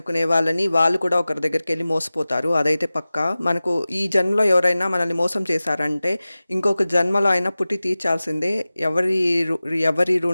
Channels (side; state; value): both; inverted; correlation -0.97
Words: వాళ్ళని, వాళ్ళు కూడా ఒకరి దగ్గరికెళ్ళి మోసపోతారు. అదైతే పక్కా. మనకు ఈ జన్మలో ఎవరైనా మనల్ని మోసం చేశారంటే, ఇంకొక జన్మలో అయినా పుట్టి తీర్చాల్సిందే. ఎవరి